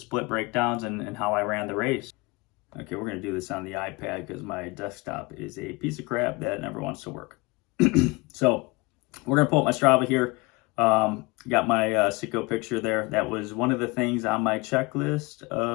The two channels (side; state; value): right; quieter; 25.2 dB